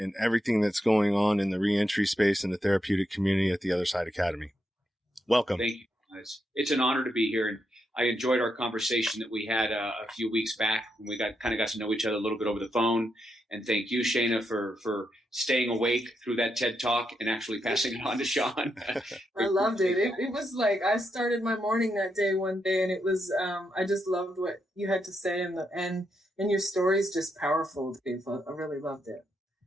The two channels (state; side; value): normal; both; correlation 0.82